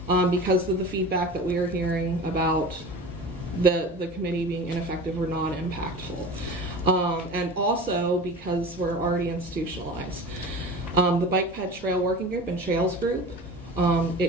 because of the feedback that we are hearing about the committee being ineffective or non-impactful. And also because we're already institutionalized. The Bike Ped Trail Working Group and Trails Group,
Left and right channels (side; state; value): both; normal; correlation 0.35